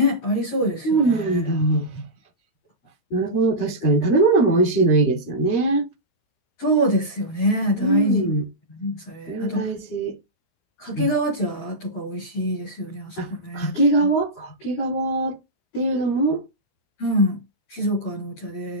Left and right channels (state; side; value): late; right; 16 ms